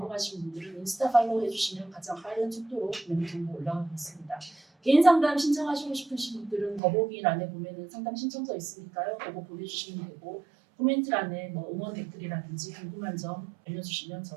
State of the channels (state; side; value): drops out; left; at 6.8 s